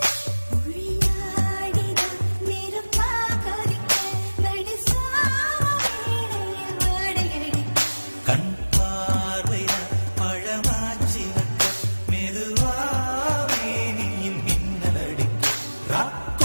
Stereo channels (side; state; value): both; inverted; correlation -1.00